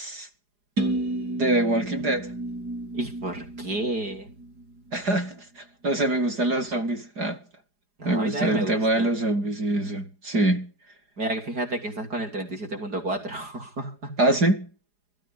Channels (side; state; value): left; late; 4.8 ms